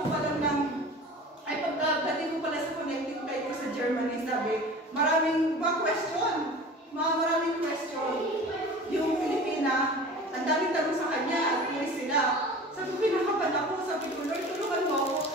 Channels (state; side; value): normal; both; correlation 0.39